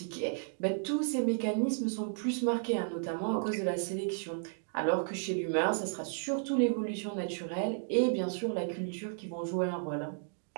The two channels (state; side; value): silent; left; digital silence